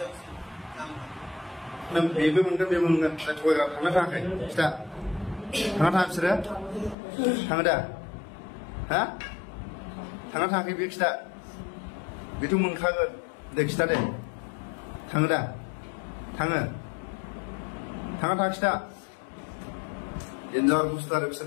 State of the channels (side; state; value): right; drops out; at 7.0 s